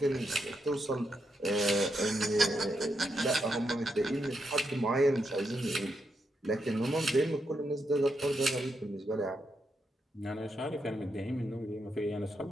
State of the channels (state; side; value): normal; both; correlation 0.82